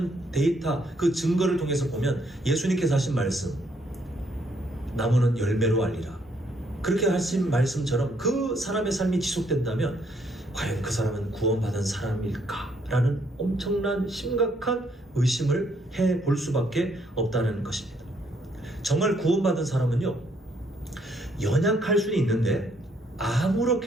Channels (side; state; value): both; normal; correlation 0.70